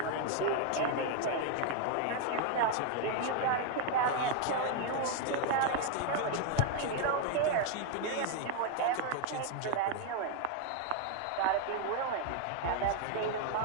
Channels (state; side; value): different; both; correlation 0.00